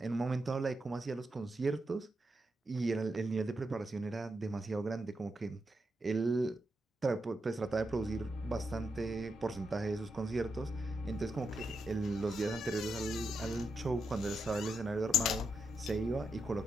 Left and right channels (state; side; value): normal; both; correlation 0.84